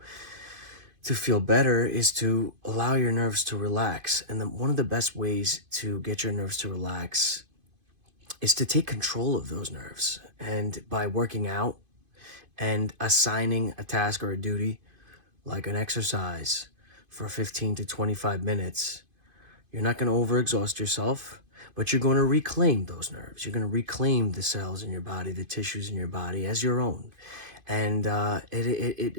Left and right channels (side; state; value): left; late; 2.5 ms